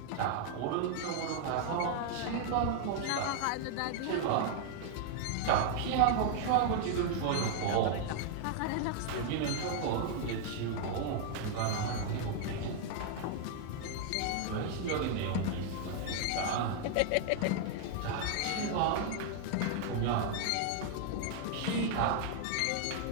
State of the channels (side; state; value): both; different; correlation 0.00